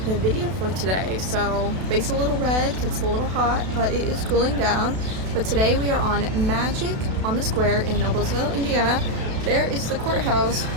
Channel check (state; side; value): late; left; 32 ms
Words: the video for today. So face a little red, it's a little hot, but it is cooling down. But today we are on Magic on the Square in Noblesville, Indiana. There is the courthouse